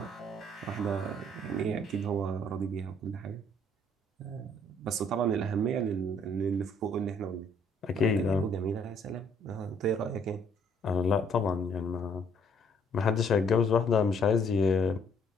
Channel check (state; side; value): normal; both; correlation 0.64